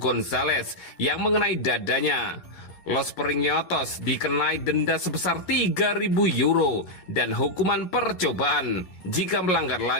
yang mengenai dadanya. Los Periñotos dikenai denda sebesar 3.000 euro dan hukuman percobaan. Jika melanggar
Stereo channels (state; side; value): late; right; 11 ms